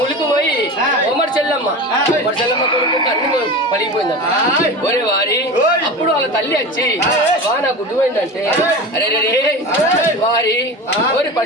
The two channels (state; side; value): normal; both; correlation 0.30